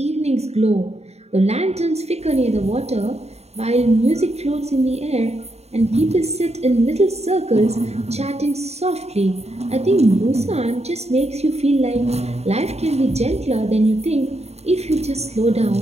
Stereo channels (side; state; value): left; late; 0.31 ms